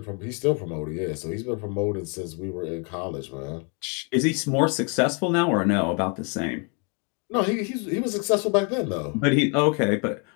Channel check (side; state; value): right; quieter; 36.4 dB